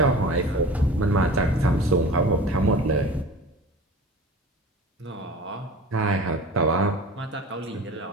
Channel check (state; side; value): normal; both; correlation 0.38